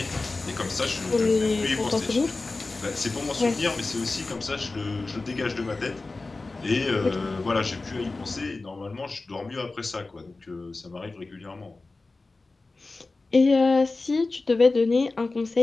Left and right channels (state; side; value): quieter; right; 3.5 dB